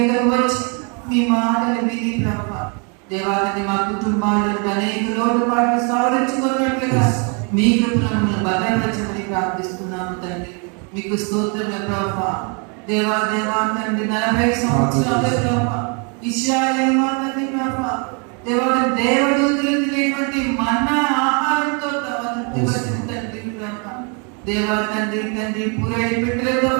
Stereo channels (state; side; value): quieter; left; 36.0 dB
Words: వచ్చి మీ మాటలు విని ప్రభా దేవా తండ్రి మా కుటుంబాలలో అనేక లోటుపాట్లు సాధించుకున్నట్లుగా మీ కృపలను భద్రపరచమని ప్రార్థిస్తున్నాము తండ్రి. మీకు స్తోత్రములు ప్రభా. దేవా దేవా తండ్రి 40 సంవత్సరాలు ప్రభా ఇశ్రాయేలు మా తండ్రి ప్రభా దేవా దేవదూతలు తినేటువంటి మన్నా ఆహారంతో తృప్తిపరిచిన తండ్రి ప్రభా దేవా తండ్రి తండ్రి పూరేడు పెట్టెలతో